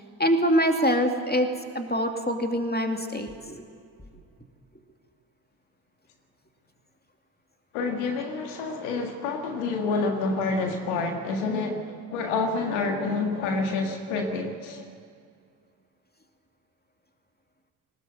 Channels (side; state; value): both; normal; correlation 0.32